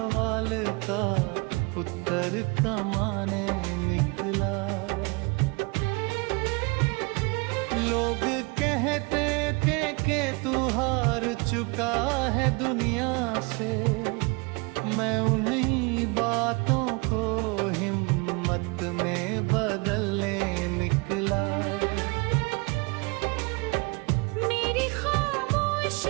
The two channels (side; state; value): left; quieter; 28.8 dB